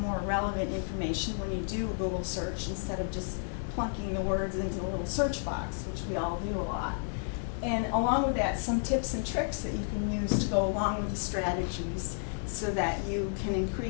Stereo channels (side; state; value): right; silent; digital silence